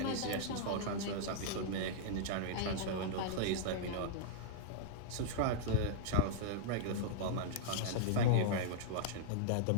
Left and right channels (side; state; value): both; different; correlation -0.02